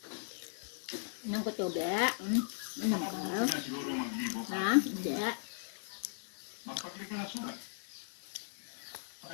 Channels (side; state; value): right; silent; 53 dB below the other